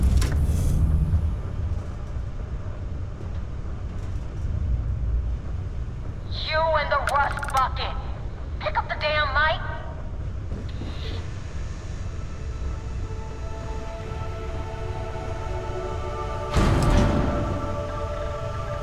You and the rust bucket. Pick up the damn mic.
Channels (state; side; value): identical; both; correlation 1.00